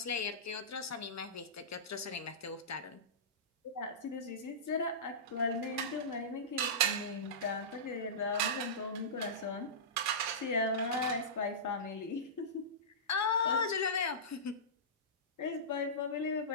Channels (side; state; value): both; normal; correlation -0.20